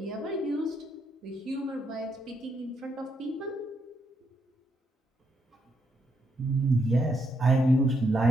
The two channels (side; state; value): both; normal; correlation 0.78